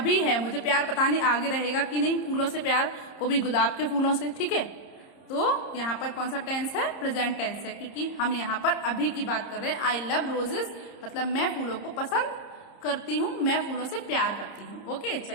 है, मुझे प्यार पता नहीं आगे रहेगा कि नहीं, फूलों से प्यार, वो भी गुलाब के फूलों से। ठीक है, तो यहाँ पर कौन सा टेंस है? प्रेजेंट टेंस है, क्योंकि हम यहाँ पर अभी की बात कर रहे हैं। आई लव रोजेस मतलब मैं फूलों को पसंद करती हूँ, मैं फूलों से प्यार करती हूँ। ओके,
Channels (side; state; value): right; late; 30 ms